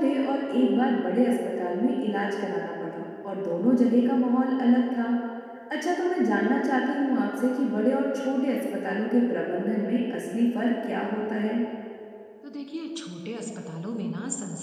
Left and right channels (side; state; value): both; identical; correlation 1.00